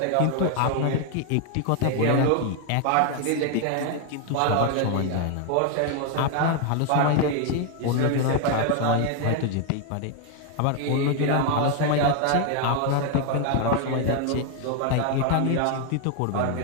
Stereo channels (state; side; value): different; both; correlation 0.00